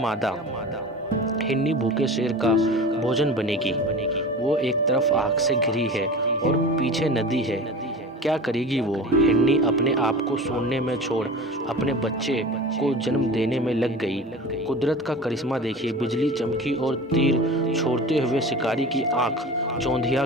हिरनी भूखे शेर का भोजन बनेगी? वो एक तरफ आग से घिरी है और पीछे नदी है। क्या करेगी वो? हिरनी अपने आप को सूंघने में छोड़ अपने बच्चे को जन्म देने में लग गई। कुदरत का करिश्मा देखिए, बिजली चमकी और तीर छोड़ते हुए शिकारी की आंख चौंधिया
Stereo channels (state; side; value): normal; both; correlation 0.35